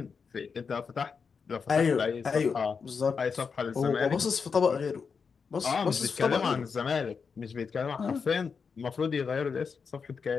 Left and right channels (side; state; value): right; quieter; 5.7 dB